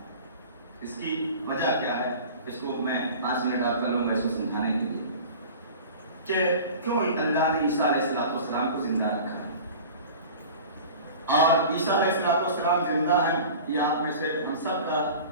اس کی وجہ کیا ہے؟ اس کو میں 5 منٹ آپ کر لوں گا اس کو سمجھانے کے لیے کہ کیوں اللہ نے عیسیٰ علیہ السلام کو زندہ رکھا ہے. اور عیسیٰ علیہ السلام زندہ ہیں، یہ آپ میں سے ہم سب کا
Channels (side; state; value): both; inverted; correlation -0.39